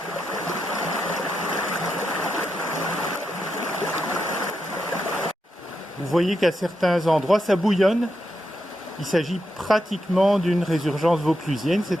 Vous voyez qu'à certains endroits, ça bouillonne. Il s'agit pratiquement d'une résurgence vauclusienne,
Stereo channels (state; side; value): normal; both; correlation 0.85